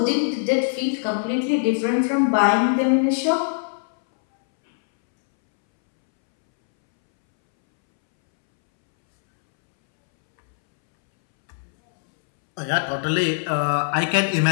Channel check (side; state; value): right; silent; 65 dB below the other